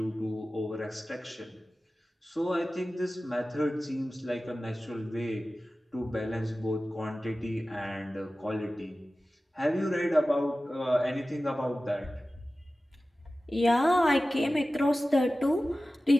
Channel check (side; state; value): both; normal; correlation 0.96